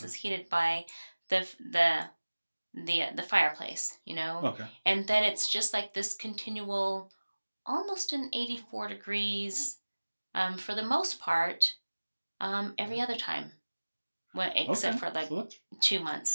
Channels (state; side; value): inverted; both; correlation -1.00